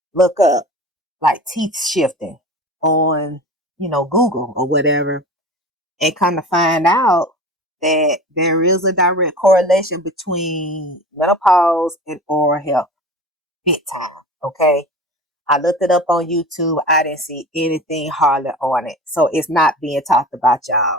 look up like teeth shifting on, Google or whatever, and kind of find out that there is a direct correlation between menopause and oral health. Big time. Okay. I looked it up on YouTube. I didn't see anything hardly on it. So it's not being talked about,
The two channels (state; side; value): normal; both; correlation 0.36